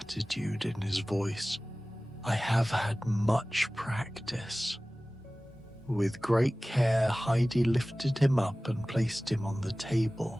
in his voice. "I have had much practice." With great care, Heidi lifted him up and placed him on the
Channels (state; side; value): normal; both; correlation 0.98